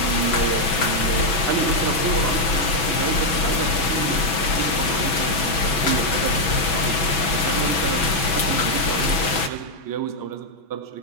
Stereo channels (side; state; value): right; late; 6.1 ms